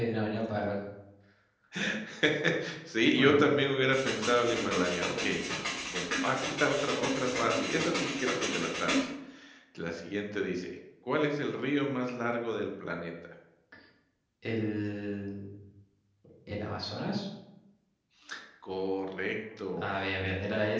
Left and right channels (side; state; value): both; identical; correlation 1.00